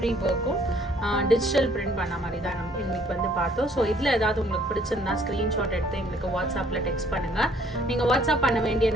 ஒர்க்கும் டிஜிட்டல் பிரிண்ட் பண்ண மாதிரி தான் நம்ம இன்னைக்கு வந்து பார்த்தோம். ஸோ இதில் ஏதாவது உங்களுக்கு பிடிச்சிருந்தா ஸ்க்ரீன்ஷாட் எடுத்து எங்களுக்கு வாட்ஸ்அப்பில் டெக்ஸ்ட் பண்ணுங்கள். நீங்கள் வாட்ஸ்அப் பண்ண வேண்டிய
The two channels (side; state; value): both; normal; correlation 0.61